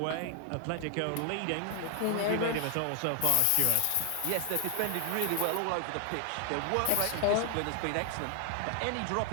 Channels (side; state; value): both; different; correlation 0.00